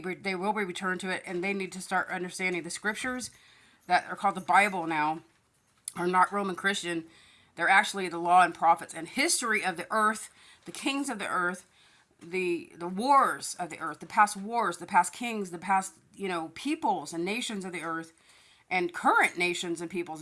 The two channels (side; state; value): both; identical; correlation 1.00